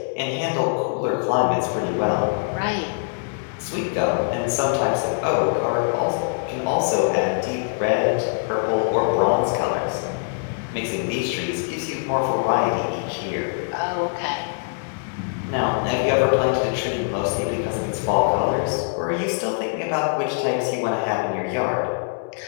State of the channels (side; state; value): right; silent; digital silence